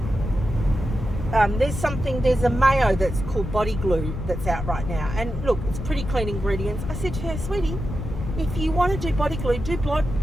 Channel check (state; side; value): noise; left; rumble, 6 dB below the sound